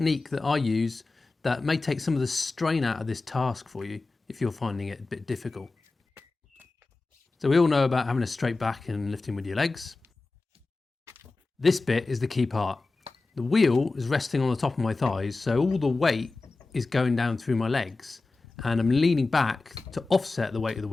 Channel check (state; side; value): quieter; right; 3.6 dB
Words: that I use that may take some of the strain out of this task for you if you're finding it a bit difficult. So we all know about having a straight back and lifting with your legs. This bit is the key part. The wheel is resting on the top of my thighs, so all the weight is going down through my legs, and I'm leaning back to offset the weight of the